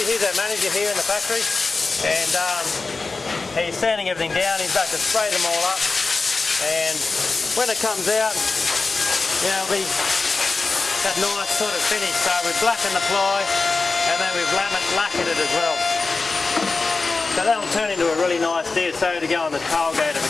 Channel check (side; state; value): right; quieter; 4.0 dB